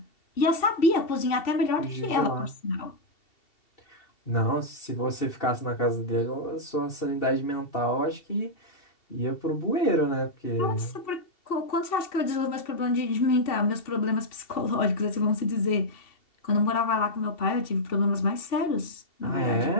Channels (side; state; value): right; late; 2.7 ms